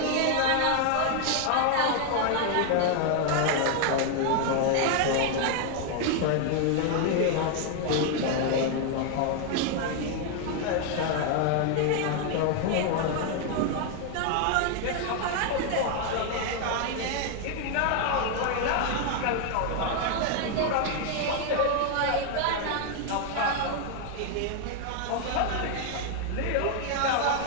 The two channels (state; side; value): different; both; correlation 0.00